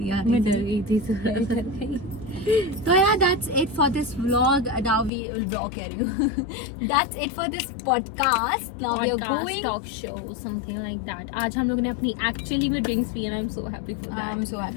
आ मैं रही डर थी. गई थी थोड़ा. तो यार that's it for this vlog. Now we will blog कह रही हूँ. That's it for this podcast. Now we are going talk show something like that. आज हम लोगों ने अपनी एक्चुअली में ड्रिंक्स पी and I am so happy for I am that. So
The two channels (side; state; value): right; drops out; at 5.1 s